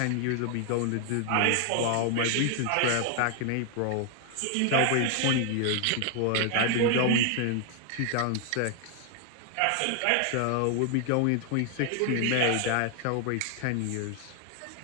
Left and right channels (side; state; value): both; different; correlation 0.00